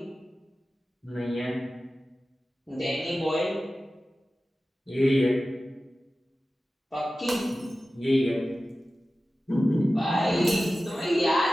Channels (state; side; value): normal; both; correlation 0.95